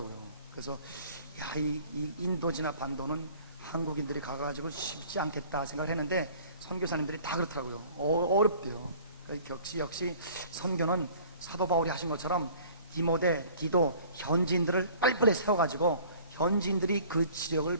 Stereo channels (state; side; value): inverted; both; correlation -0.49